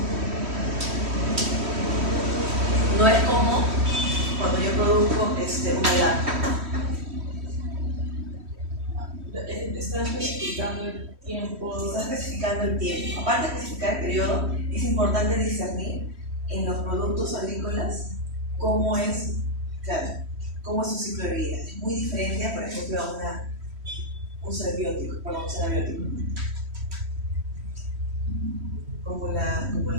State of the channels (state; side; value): late; left; 3.1 ms